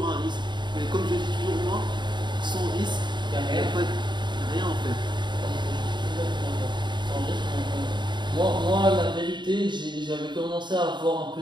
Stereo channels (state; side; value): late; left; 0.22 ms